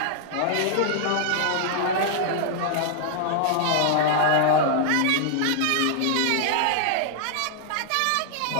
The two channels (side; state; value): both; different; correlation -0.01